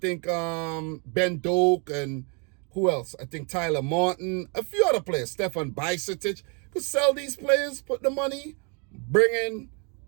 Ben Doak and who else? I think Tyler Martin, a few other players, Stefan Bajcetic. Could sell these players, put the money, bring in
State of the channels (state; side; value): quieter; left; 35.7 dB